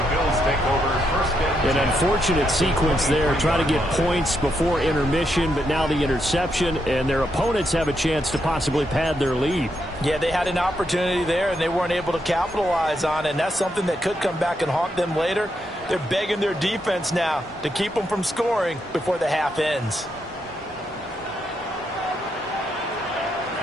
Bills take over first and 10. An unfortunate sequence there, trying to get points before intermission, but now the interception, and their opponents have a chance to possibly pad their lead. Yeah, they had an opportunity there, and they weren't able to capitalize on it, and that's something that could come back and haunt them later. They're begging their defense now to keep them from scoring before the half ends.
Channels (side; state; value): both; normal; correlation 0.80